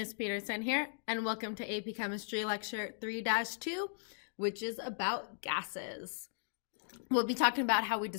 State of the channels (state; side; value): silent; right; digital silence